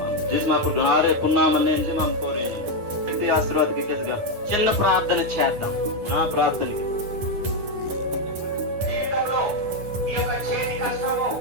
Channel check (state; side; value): late; left; 9.8 ms